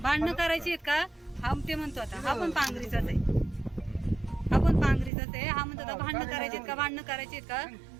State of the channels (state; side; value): drops out; left; at 5.1 s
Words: भांडणं करायची आहेत का? हा ते म्हणतो आता हा पण पांगरीचाच आहे, हा पण पांगरीचाच आहे. हा म्हणतो आता भांडणं करायची का, भांडणं करायची आहेत का?